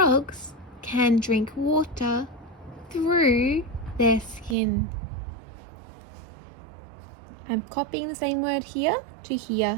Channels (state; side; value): drops out; left; at 4.5 s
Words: can drink water through their skin. I'm copying the same word here to